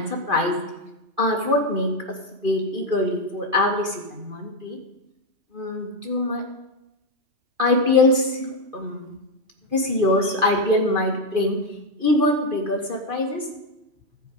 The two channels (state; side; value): late; left; 2.5 ms